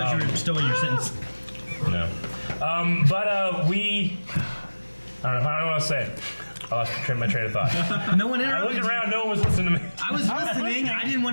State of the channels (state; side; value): inverted; both; correlation -1.00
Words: you were still in your sentence. No. But we, I don't know what to say. I lost my train of thought. No one I interrupted looked you. around, no one was listening to me. I was listening. I didn't